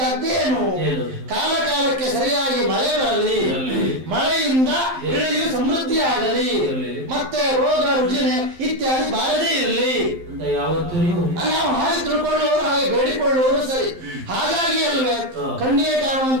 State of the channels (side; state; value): left; late; 11 ms